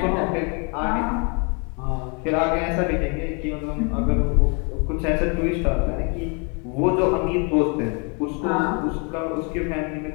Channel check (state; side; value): quieter; right; 34.7 dB